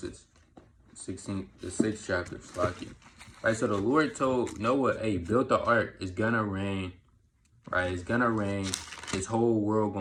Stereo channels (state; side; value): identical; both; correlation 1.00